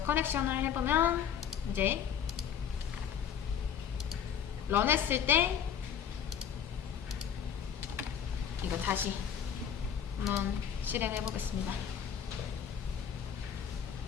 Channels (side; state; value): right; quieter; 8.3 dB